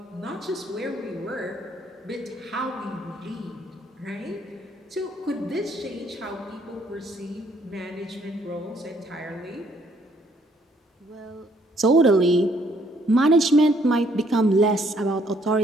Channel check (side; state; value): both; normal; correlation 0.66